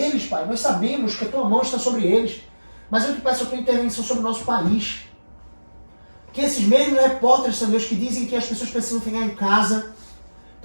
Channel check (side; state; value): both; inverted; correlation -1.00